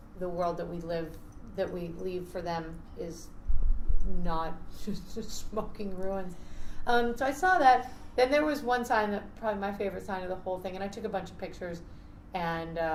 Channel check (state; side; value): identical; both; correlation 1.00